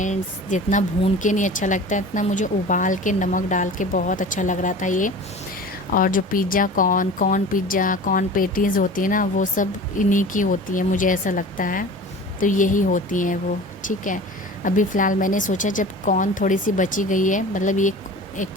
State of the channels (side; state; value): both; normal; correlation 0.38